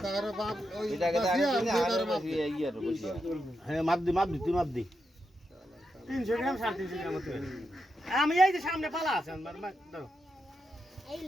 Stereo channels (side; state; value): both; normal; correlation 0.85